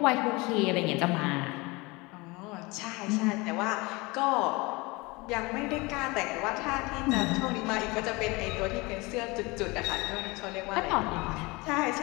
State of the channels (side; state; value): right; quieter; 24.6 dB